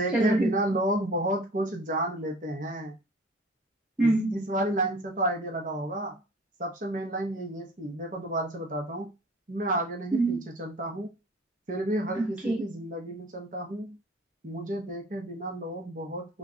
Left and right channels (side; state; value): both; normal; correlation 0.45